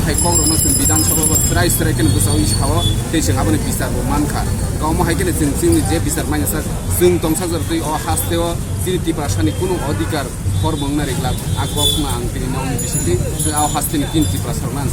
हायखौ रनो जों बिधान सभा स्राय केन गोसाव इसाव दैजों आबोनि बिसारबो मानखा गावमो हायकेन जों जोंनि जे बिसार माइनासा जों दंसा जरतै अ हास्तेव जिरिति भाषानि कुनु अधिकार फरमंना रेगला आगवा फुङा आं दिनै नावनि बिसिनि जों आव हास्तेनि किनति प्रसारना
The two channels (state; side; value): identical; both; correlation 1.00